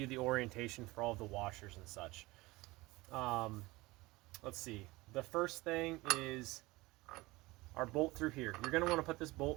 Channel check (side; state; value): left; quieter; 21.2 dB